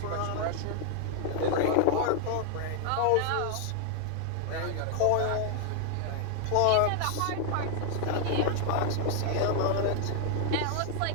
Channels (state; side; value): different; both; correlation 0.00